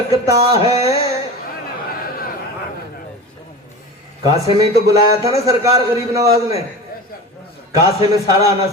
ہے۔ کاسے میں ہی تو بلایا تھا نا سرکار غریب نواز نے، کاسے میں سارا آنا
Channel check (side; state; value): both; normal; correlation 0.31